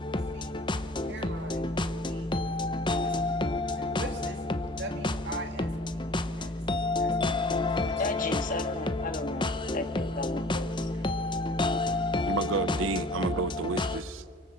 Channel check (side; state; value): both; normal; correlation 0.47